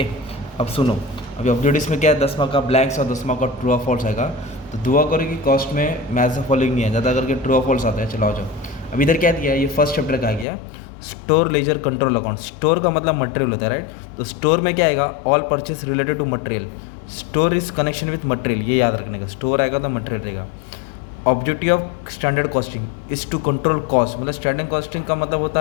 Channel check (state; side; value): drops out; right; at 10.5 s